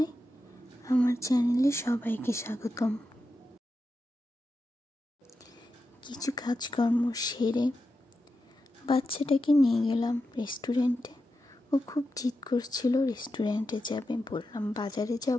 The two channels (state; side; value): normal; both; correlation 0.89